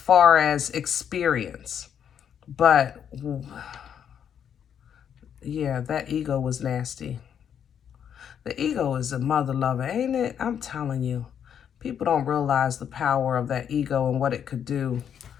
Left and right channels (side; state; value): right; quieter; 8.5 dB